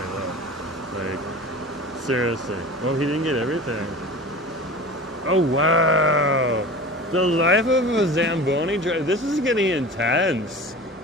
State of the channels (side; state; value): both; normal; correlation 0.36